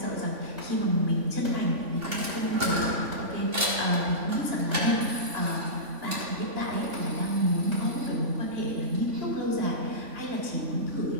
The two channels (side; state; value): left; late; 3.5 ms